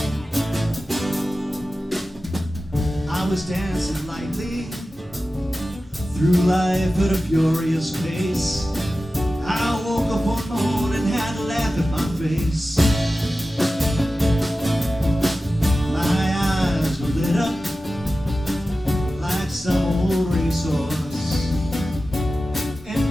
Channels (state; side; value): normal; both; correlation 0.94